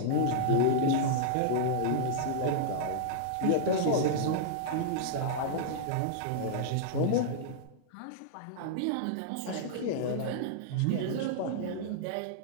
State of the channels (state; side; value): different; both; correlation -0.01